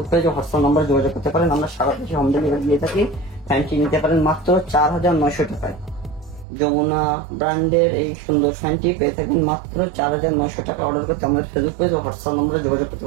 পেজে হোয়াটসঅ্যাপ নাম্বার যোগাযোগ করতে পারেন, আমরা সারা দেশে হোম ডেলিভারি দিয়ে থাকি। ফ্যানটি নিতে পারেন মাত্র 4900 টাকায়। যমুনা ব্র্যান্ডের এই সুন্দর ফ্যানটি পেয়ে থাকবেন মাত্র 4900 টাকা। অর্ডার করতে আমাদের ফেসবুক পেজ ও হোয়াটসঅ্যাপ নম্বরে যোগাযোগ করতে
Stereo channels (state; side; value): drops out; left; at 6.5 s